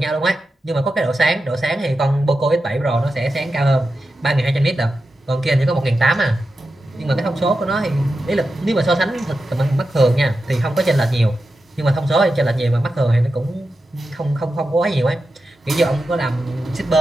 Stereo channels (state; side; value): normal; both; correlation 0.90